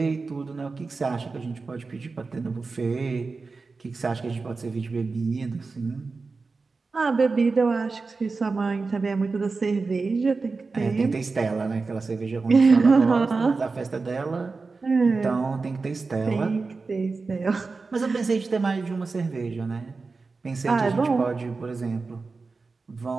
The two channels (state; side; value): quieter; left; 4.1 dB